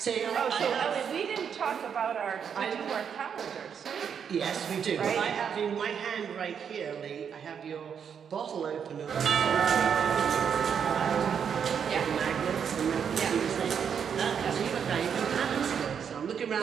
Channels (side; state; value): left; quieter; 7.5 dB